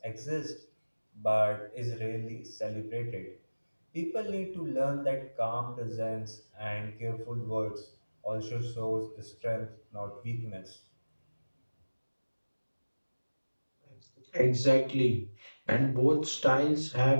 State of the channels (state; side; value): inverted; both; correlation -1.00